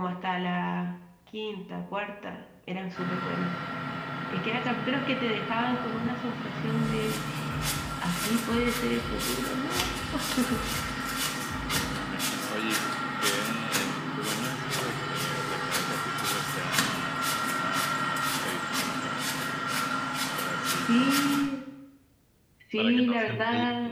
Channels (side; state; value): both; identical; correlation 1.00